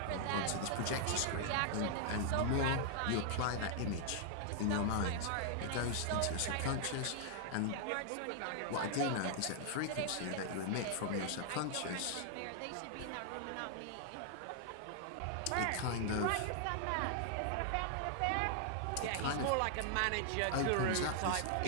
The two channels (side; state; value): both; different; correlation 0.00